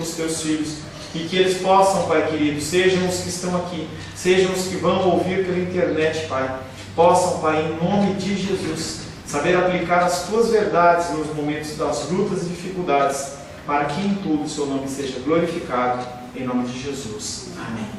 os Teus filhos, e que eles possam, Pai querido, sejam os que estão aqui, sejam os que vão ouvir pela internet, Pai, possam, Pai, em nome de Jesus, saber aplicar as Tuas verdades nos momentos das lutas e dificuldades, para que em tudo o Seu nome seja glorificado, em nome de Jesus.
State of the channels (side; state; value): both; identical; correlation 1.00